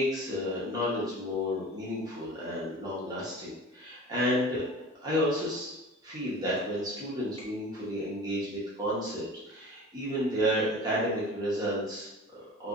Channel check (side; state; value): both; normal; correlation 0.39